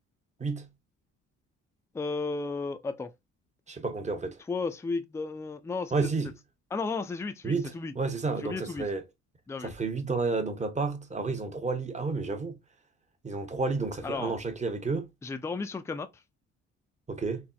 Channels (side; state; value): both; normal; correlation 0.59